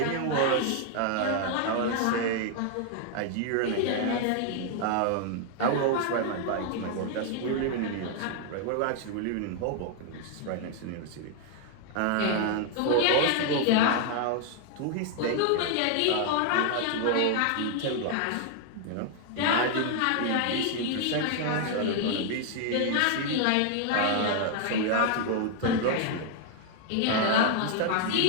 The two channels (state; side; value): different; both; correlation 0.00